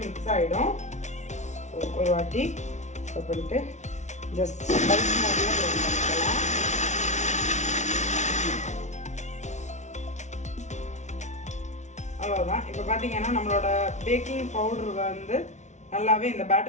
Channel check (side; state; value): right; late; 0.33 ms